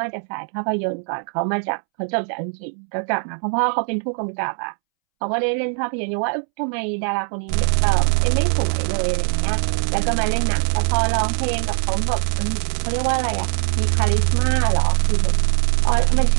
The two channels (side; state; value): left; silent; 65 dB below the other